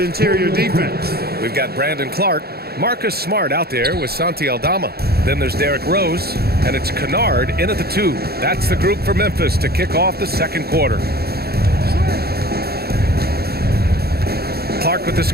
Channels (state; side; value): late; left; 0.46 ms